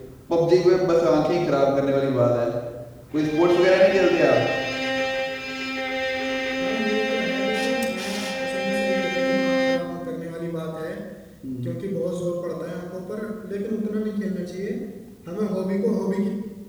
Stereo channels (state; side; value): identical; both; correlation 1.00